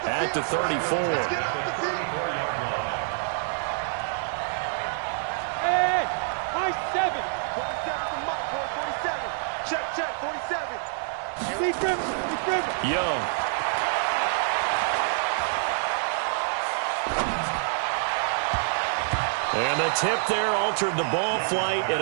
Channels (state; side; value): silent; left; 60 dB below the other